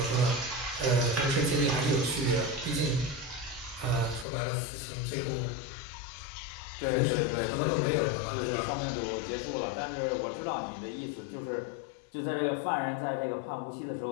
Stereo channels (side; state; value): right; drops out; at 4.2 s